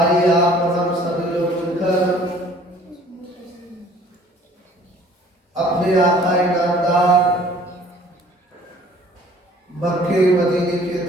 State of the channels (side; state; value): both; normal; correlation 0.53